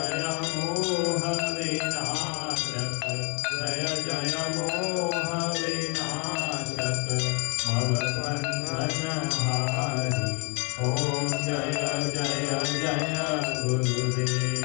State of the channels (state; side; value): quieter; right; 33.5 dB